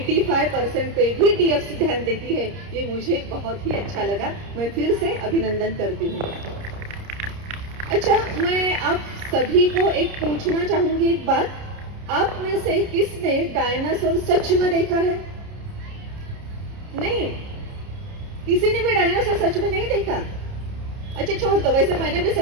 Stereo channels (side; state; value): left; late; 30 ms